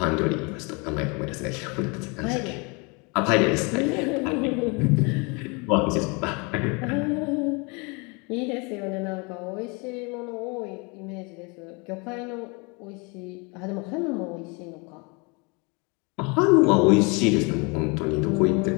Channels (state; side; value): quieter; right; 30.4 dB